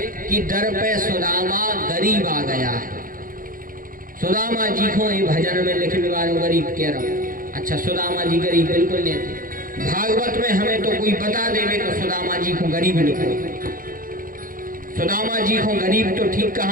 कि दर पे सुदामा गरीब आ गया है। सुदामा जी को ये भजन में लिखने वालों गरीब कह रहा हूँ। अच्छा, सुदामा जी गरीब बिल्कुल नहीं थे। भागवत में हमें तो कोई बता देवे तो सुदामा जी को गरीब लिखो। सुदामा जी को गरीब तो ठीक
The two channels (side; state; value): left; late; 0.40 ms